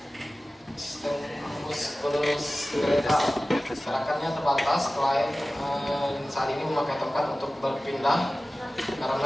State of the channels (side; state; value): both; normal; correlation 0.96